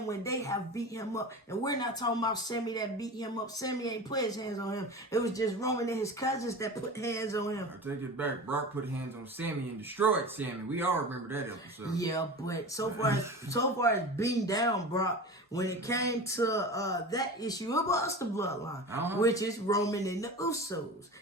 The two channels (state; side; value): normal; both; correlation 0.32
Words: when they have beat him up? And we're not talking about Sammy that beat him up. Sammy ain't put his hands on him. It was just Roman and his cousins that put hands on him. I take it back. Brock put hands on Sammy and destroyed Sammy. We all remember that episode. Yeah, but so far as beating down Brock, when it came to that issue, it was the bloodline, which is Roman and the Usos.